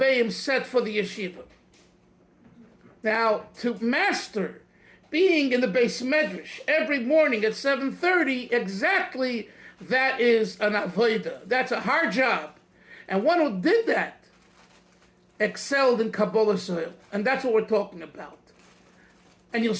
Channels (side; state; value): both; identical; correlation 1.00